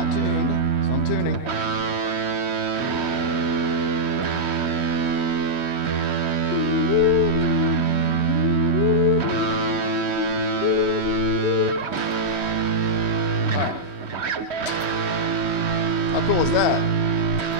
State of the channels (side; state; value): right; late; 3.1 ms